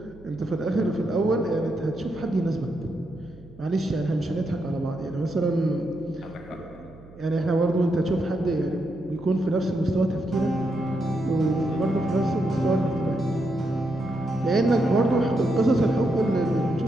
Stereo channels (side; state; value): right; noise; hum, 22 dB below the sound